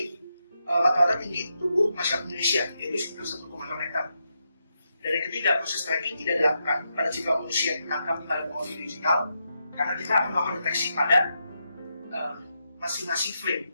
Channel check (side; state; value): both; inverted; correlation -0.84